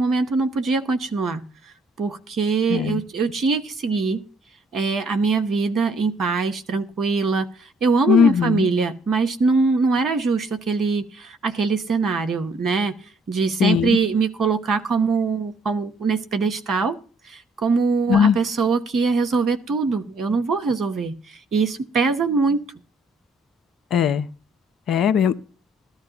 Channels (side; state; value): both; normal; correlation 0.64